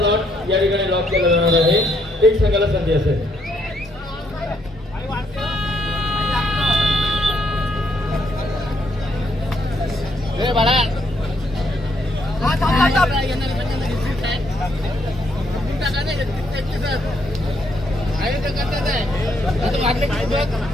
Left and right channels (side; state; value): both; normal; correlation 0.73